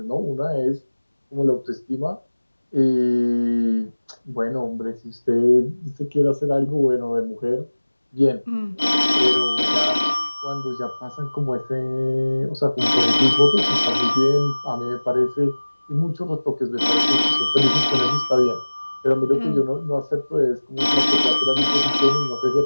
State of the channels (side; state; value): both; inverted; correlation -1.00